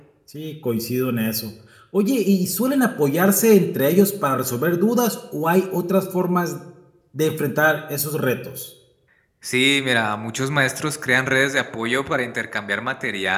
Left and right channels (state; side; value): identical; both; correlation 1.00